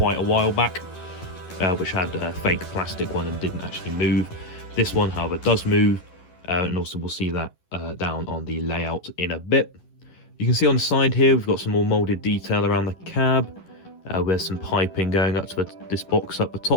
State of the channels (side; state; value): right; late; 11 ms